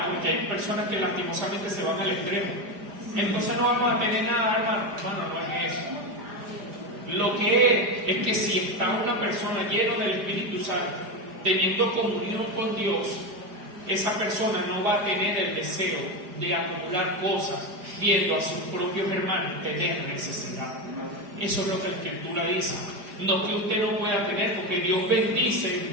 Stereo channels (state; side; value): late; left; 4.9 ms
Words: porque hay personas que lastimosamente se van al extremo. Entonces no vamos a tener nada, hermano. No es eso. Lo que es que si está una persona llena del Espíritu Santo, teniendo comunión con Dios, esa persona no va a tener el deseo de acumular cosas, viendo a sus propios hermanos tener necesidad. Eso es lo que la Escritura dice. No que usted no pueda tener, porque Dios bendice